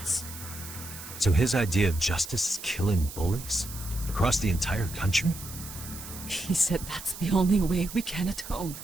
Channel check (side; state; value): right; noise; hiss, 12 dB below the sound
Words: So his idea of justice is killing bullies? Across the entire country? He said that's the only way we can atone.